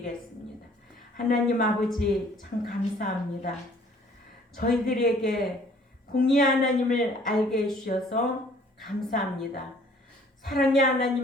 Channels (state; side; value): normal; both; correlation 0.57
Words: 하나님 아버지 참 감사합니다. 저희들에게 공의 하나님을 알게 해주셔서 감사합니다. 사랑의